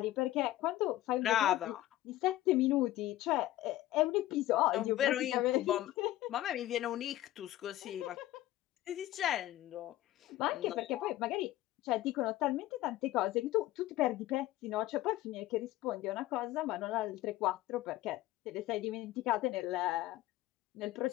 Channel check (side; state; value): right; quieter; 15.3 dB